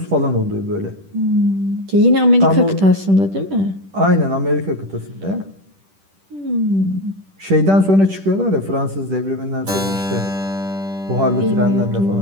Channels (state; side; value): late; left; 10 ms